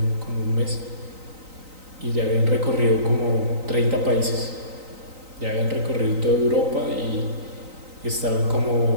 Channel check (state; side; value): late; left; 3.9 ms